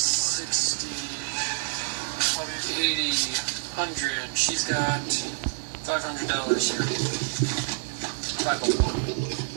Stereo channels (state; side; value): silent; left; 60 dB below the other